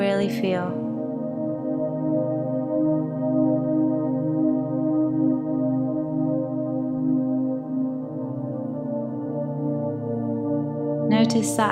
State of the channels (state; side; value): identical; both; correlation 1.00